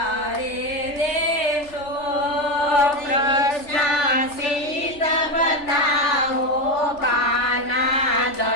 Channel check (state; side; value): late; right; 3.4 ms